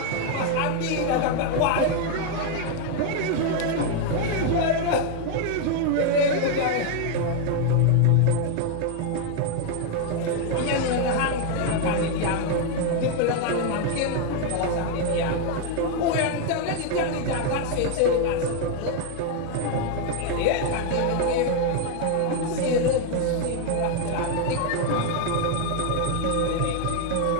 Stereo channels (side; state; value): both; different; correlation 0.00